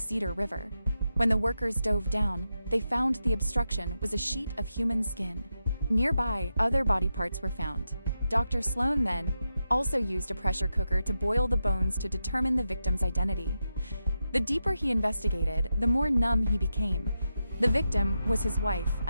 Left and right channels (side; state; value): both; inverted; correlation -0.88